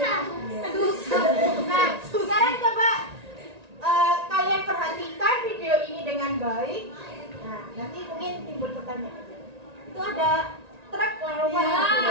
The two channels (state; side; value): late; left; 1.9 ms